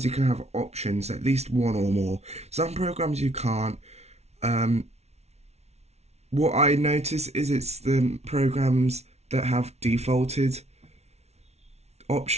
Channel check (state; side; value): late; left; 0.31 ms